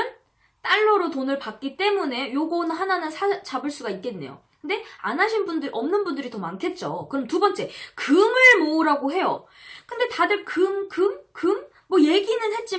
달러로 돈을 받기 때문에 요거는 하나는 잡을 수가 있겠네요. 근데 안 하신 분들, 없는 분들이 더 많겠죠. 그럼 두 번째, 금을 모으라고 해요. 근데 다들 금? 뭐 얘기는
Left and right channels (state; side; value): identical; both; correlation 1.00